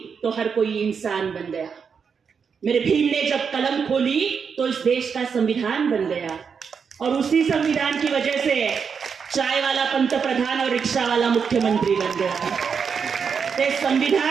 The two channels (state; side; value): quieter; left; 6.3 dB